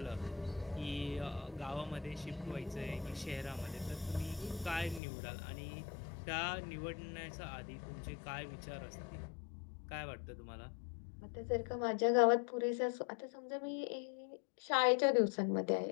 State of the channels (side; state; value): right; drops out; at 5.0 s